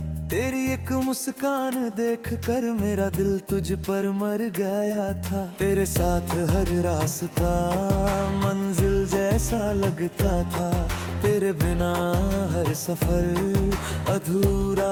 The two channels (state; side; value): identical; both; correlation 1.00